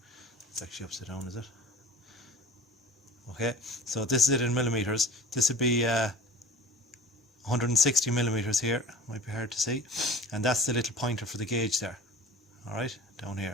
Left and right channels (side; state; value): both; normal; correlation 0.40